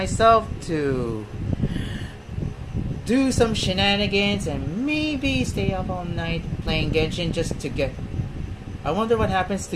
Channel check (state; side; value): identical; both; correlation 1.00